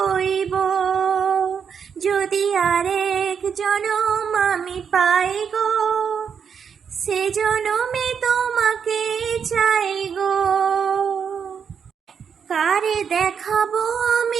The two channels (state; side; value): quieter; left; 7.0 dB